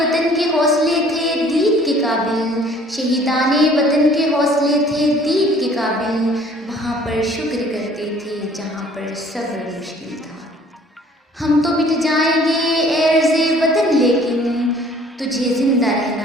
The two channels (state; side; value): normal; both; correlation 0.54